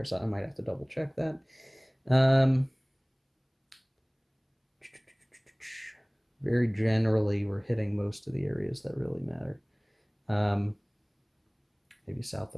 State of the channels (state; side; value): identical; both; correlation 1.00